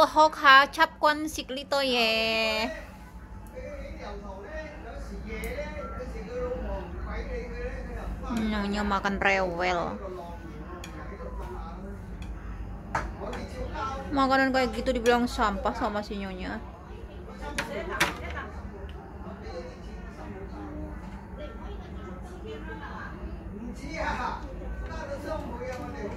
hok ha chap kwan sikli to ye. Nyonya makan rewel. Makanan kayak gitu dibilang sampah sama si nyonya.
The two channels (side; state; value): both; identical; correlation 1.00